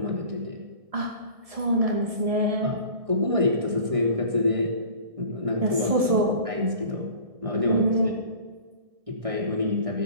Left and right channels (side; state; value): left; late; 1.7 ms